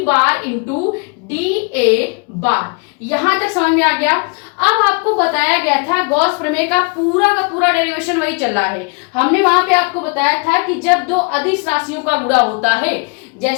बार इंटू डी ए बार। यहां तक समझ में आ गया? अब आपको बताया गया था गॉस प्रमेय का पूरा डेरिवेशन वही चल रहा है। हमने वहां पे आपको बताया था कि जब दो अदिश राशियों का गुणा होता है,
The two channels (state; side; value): quieter; right; 33.3 dB